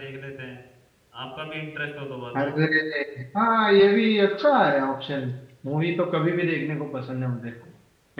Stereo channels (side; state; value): both; identical; correlation 1.00